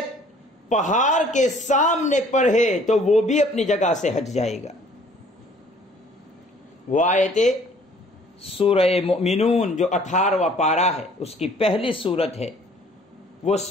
پہاڑ کے سامنے پڑھے تو وہ بھی اپنی جگہ سے ہٹ جائے گا. وہ آیتیں سورہ مؤمنون جو 18واں پارہ ہے اس کی پہلی سورت ہے، وہ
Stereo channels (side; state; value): both; normal; correlation 0.56